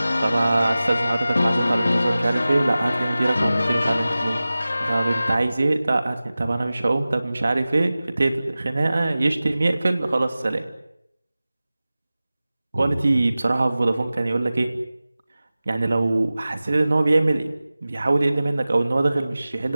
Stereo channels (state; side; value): inverted; both; correlation -0.97